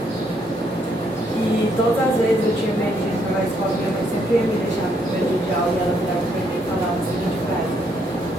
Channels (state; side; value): normal; both; correlation 0.72